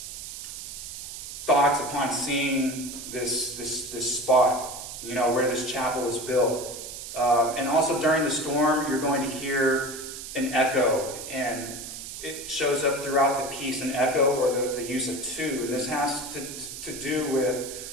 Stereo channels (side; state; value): right; noise; hiss, 10 dB below the sound